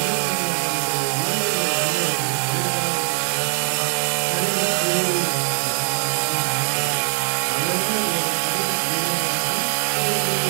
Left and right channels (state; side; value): silent; left; digital silence